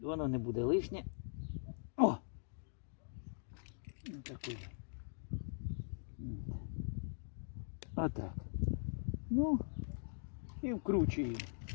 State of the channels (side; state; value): right; silent; digital silence